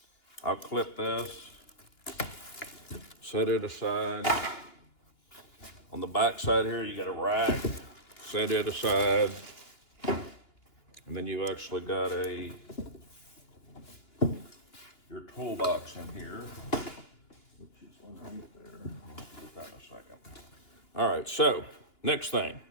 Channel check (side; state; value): right; late; 2.9 ms